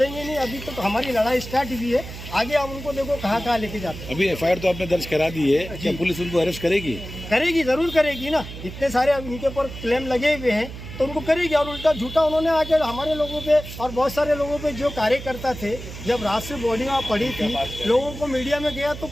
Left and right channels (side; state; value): right; noise; hum, 11 dB below the sound